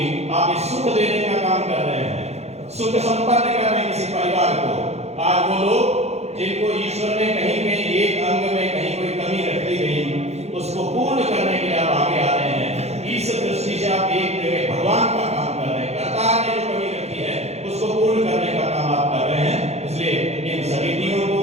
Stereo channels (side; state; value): left; late; 0.31 ms